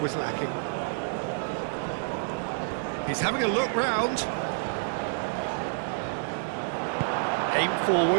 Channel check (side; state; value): left; silent; 59 dB below the other